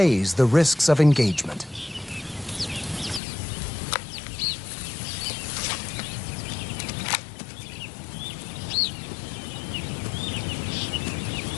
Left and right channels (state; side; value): drops out; right; at 3.2 s